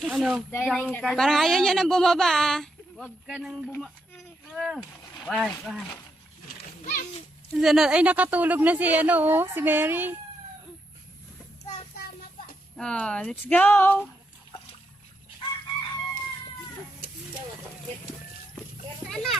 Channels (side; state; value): both; normal; correlation 0.81